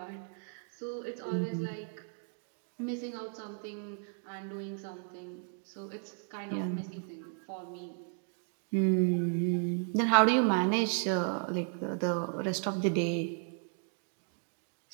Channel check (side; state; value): left; silent; 55 dB below the other